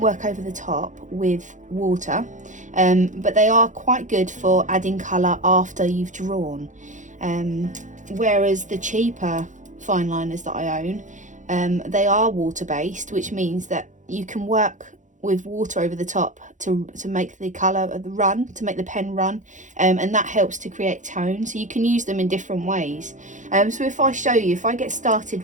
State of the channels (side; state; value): left; late; 0.36 ms